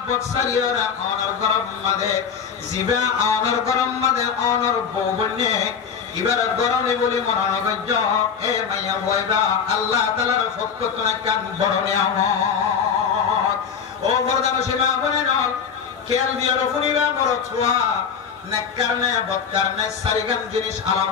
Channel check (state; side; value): quieter; right; 6.8 dB